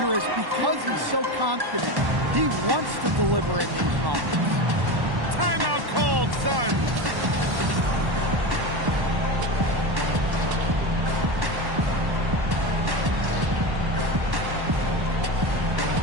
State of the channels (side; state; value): left; late; 1.1 ms